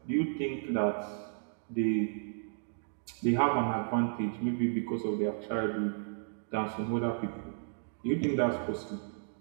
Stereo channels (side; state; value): left; silent; digital silence